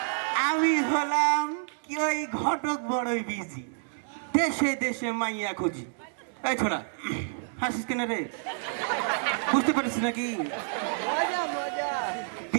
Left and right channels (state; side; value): silent; left; 59 dB below the other